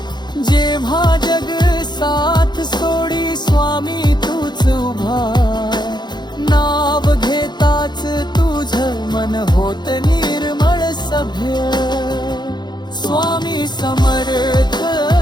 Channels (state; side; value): late; right; 0.21 ms